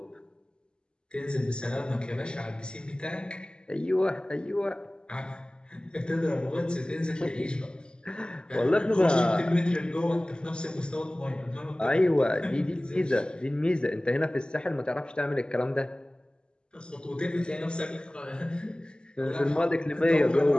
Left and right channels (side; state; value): right; late; 0.049 ms